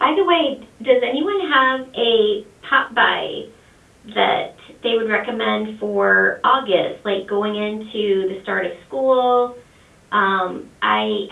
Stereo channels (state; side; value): identical; both; correlation 1.00